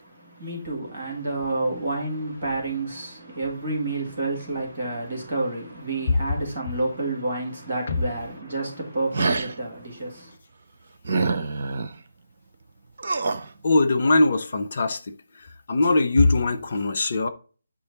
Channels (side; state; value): both; inverted; correlation -0.84